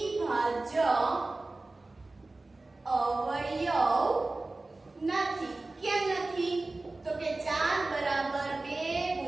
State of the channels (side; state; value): left; quieter; 3.1 dB